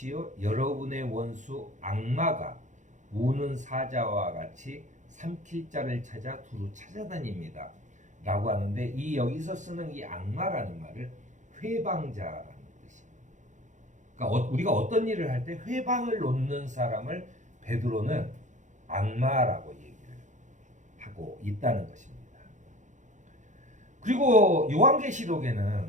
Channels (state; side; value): late; left; 0.35 ms